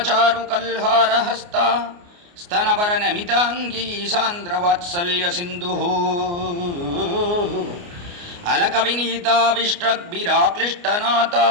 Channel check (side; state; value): left; late; 29 ms